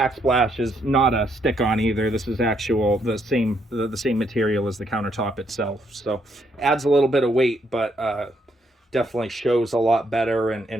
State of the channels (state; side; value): normal; both; correlation 0.74